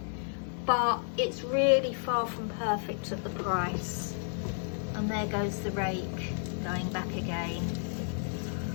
but it's really far from perfect at the price. And there goes the rake going back again.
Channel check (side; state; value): right; silent; digital silence